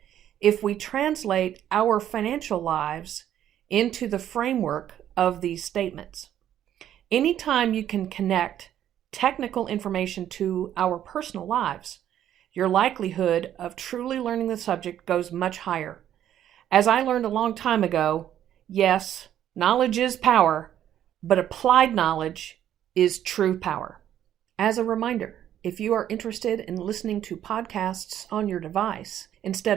if we translate our financial lives into the framework of these statements. Anytime you can connect technical information to our personal lives, your likelihood of truly learning the subject goes much higher. As I learned a long time ago, yes, knowledge is power, but applied knowledge is true power. As a reminder, if you are interested in listening to podcasts on your device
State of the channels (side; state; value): left; quieter; 11.0 dB